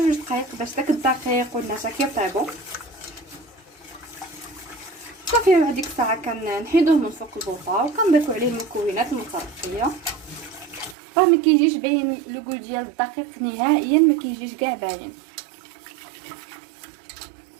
دقائق باش داك الدقيق والنشا كيطيبوا صافي. بعد ديك الساعه كنحيدوه من فوق البوطه وكنضيفوا عليه المكونات المتبقيه. راه ما كيجيش باين لوغو ديال الدقيق نهائيا، ما كيجيش كاع باين.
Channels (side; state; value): left; drops out; at 11.0 s